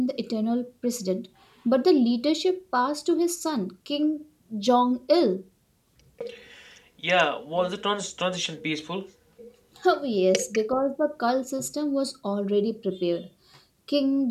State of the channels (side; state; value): both; identical; correlation 1.00